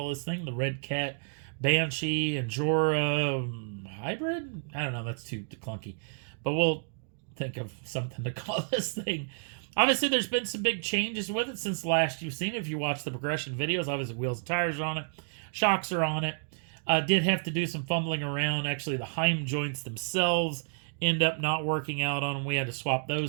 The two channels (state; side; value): silent; left; digital silence